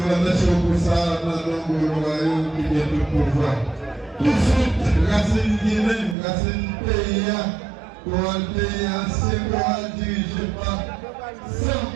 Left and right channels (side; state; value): left; drops out; at 6.2 s